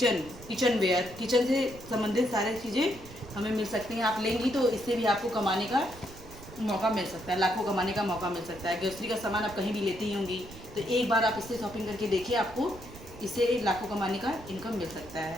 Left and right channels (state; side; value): noise; right; rumble, 17 dB below the sound